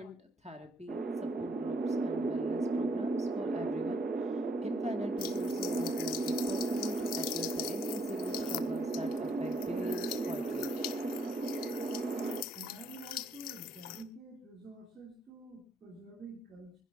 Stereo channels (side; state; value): both; normal; correlation 0.69